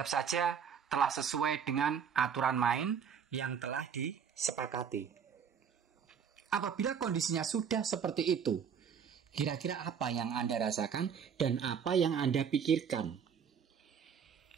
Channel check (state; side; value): quieter; left; 7.3 dB